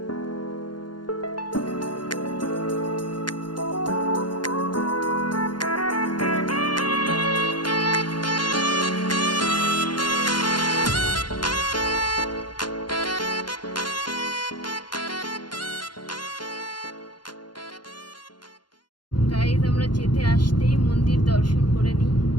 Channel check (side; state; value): right; late; 0.71 ms